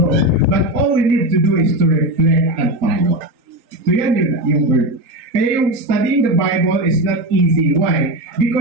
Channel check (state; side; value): late; left; 3.8 ms